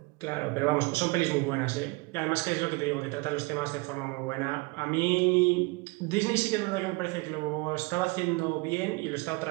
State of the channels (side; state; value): left; quieter; 26.2 dB